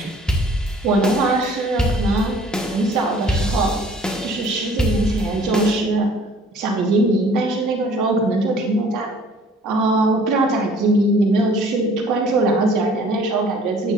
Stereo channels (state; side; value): normal; both; correlation 0.53